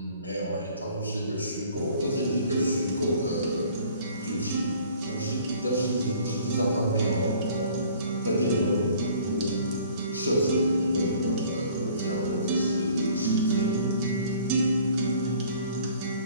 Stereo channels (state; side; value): inverted; both; correlation -0.53